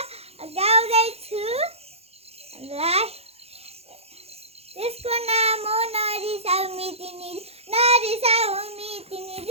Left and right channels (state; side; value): late; left; 0.29 ms